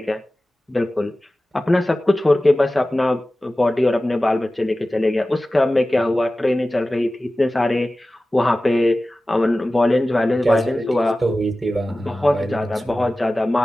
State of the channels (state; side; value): normal; both; correlation 0.96